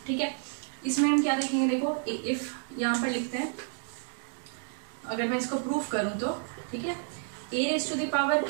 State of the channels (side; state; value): left; silent; 58 dB below the other